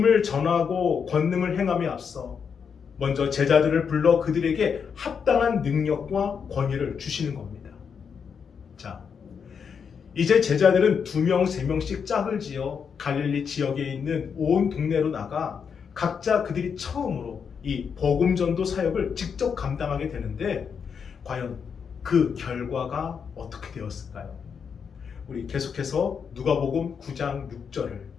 전하고 권능을 행함에 앞서 먼저 제자들을 불러 그들에게 합당한 능력과 권위를 주시는 겁니다. 자, 이제 제자들은 2명, 3명씩 짝을 지어 갈릴리 지역에 있는 온 동네로 나가 각자 그들이 처음으로 이 복음 전도 사역을 직접 감당하게 되는데 과연 그 결과가 어떻게 되었을까요? 우리 계속해서 누가복음 9장 6절을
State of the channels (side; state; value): right; quieter; 6.6 dB